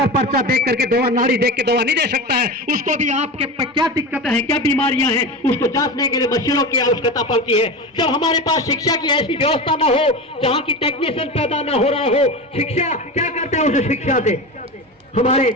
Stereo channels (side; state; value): both; normal; correlation 0.25